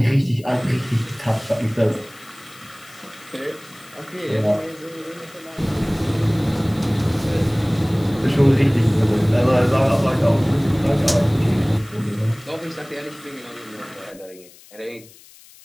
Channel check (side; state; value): left; noise; hiss, 23 dB below the sound